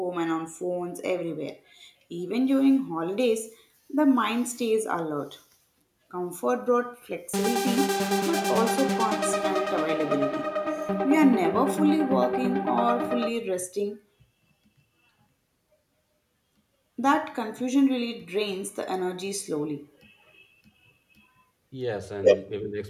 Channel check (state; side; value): identical; both; correlation 1.00